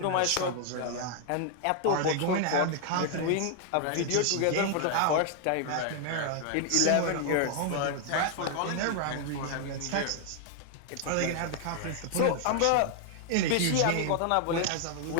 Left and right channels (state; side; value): different; both; correlation 0.00